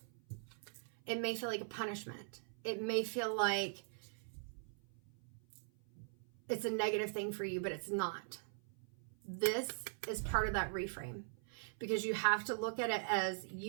It may feel like a punishment. It may feel like it's a negative thing for you, but it's not. This is part of that reframe, because you have to look at it as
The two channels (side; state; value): left; silent; 50 dB below the other